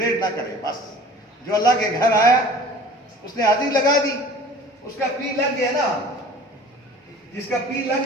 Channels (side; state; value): both; normal; correlation 0.45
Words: نہ کرے. بس جو اللہ کے گھر آیا اس نے حاضری لگا دی اس کا پی لگ گیا نا. جس کا پی